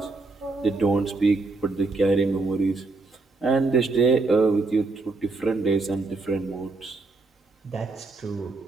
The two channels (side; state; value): left; quieter; 3.6 dB